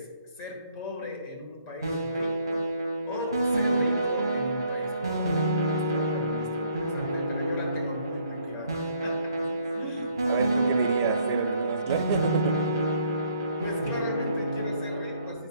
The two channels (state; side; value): inverted; both; correlation -0.66